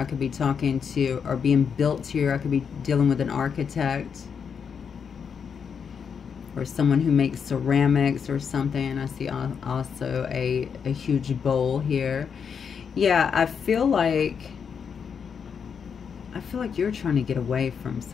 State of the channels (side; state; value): right; quieter; 6.7 dB